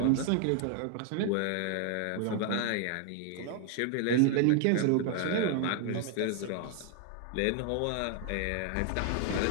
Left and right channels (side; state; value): both; different; correlation 0.00